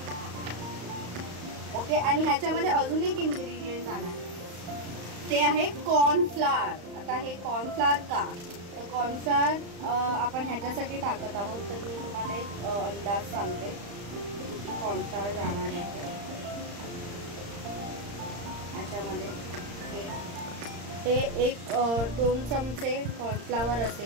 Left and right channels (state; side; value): late; left; 35 ms